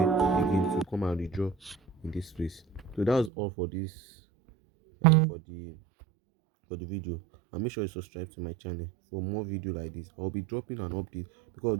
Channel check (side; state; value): left; drops out; at 3.3 s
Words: again to come and withdraw in this place. So that's all for this for the video. And make sure you subscribe to my channel for more video like this. I'll be dropping an update because